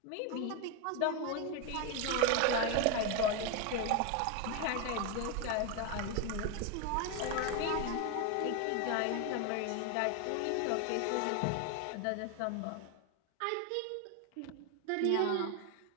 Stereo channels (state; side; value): different; both; correlation 0.02